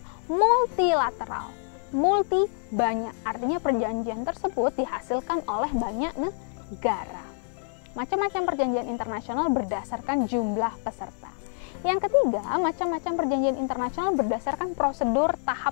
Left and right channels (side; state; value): right; silent; digital silence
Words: multilateral, multi banyak, artinya perjanjian tersebut dihasilkan oleh banyak negara. Macam-macam perjanjian internasional berdasarkan jumlah peserta. Yang ketiga, macam-macam perjanjian internasional berdasarkan prosedur